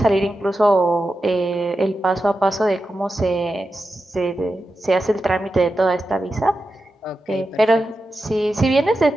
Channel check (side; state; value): both; normal; correlation 0.90